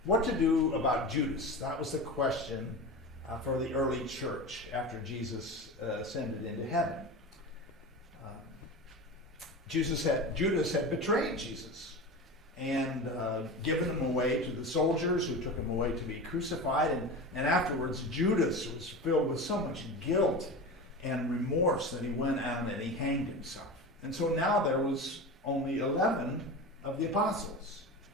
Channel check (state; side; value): normal; both; correlation 0.28